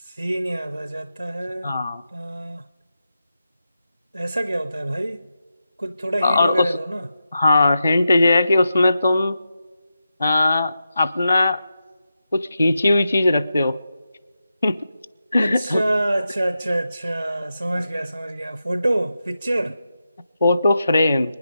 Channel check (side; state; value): both; inverted; correlation -0.89